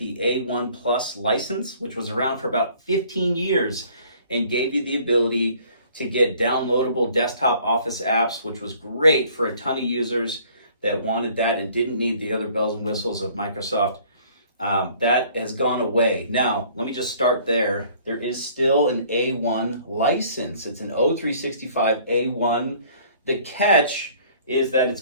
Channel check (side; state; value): both; inverted; correlation -0.56